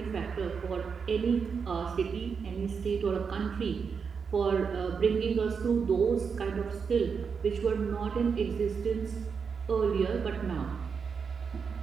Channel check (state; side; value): quieter; left; 5.9 dB